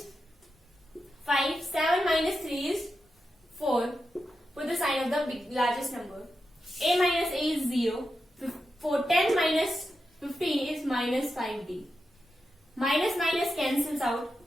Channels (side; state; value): both; normal; correlation 0.89